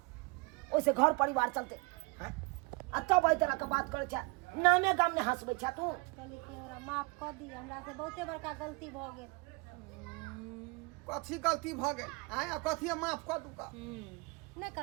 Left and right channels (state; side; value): quieter; left; 28.9 dB